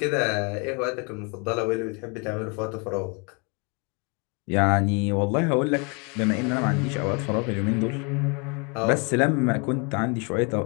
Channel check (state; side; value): quieter; right; 32.9 dB